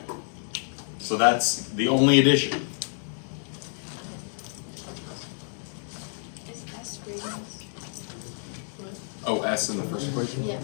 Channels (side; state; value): right; silent; 59 dB below the other